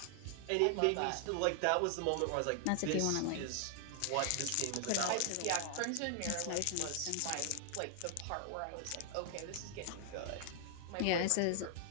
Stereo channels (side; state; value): both; different; correlation 0.00